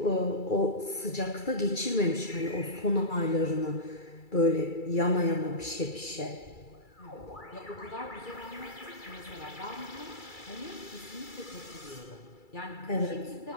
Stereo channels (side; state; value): right; late; 2.3 ms